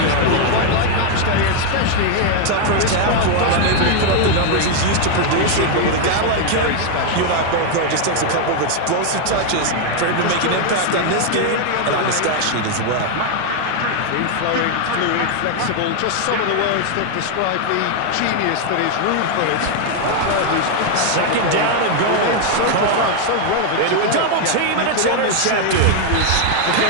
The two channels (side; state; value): both; different; correlation 0.01